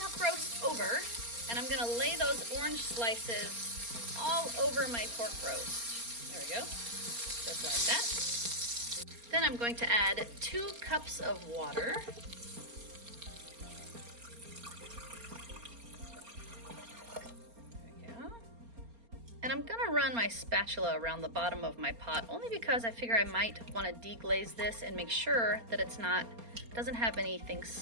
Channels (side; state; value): left; late; 4.3 ms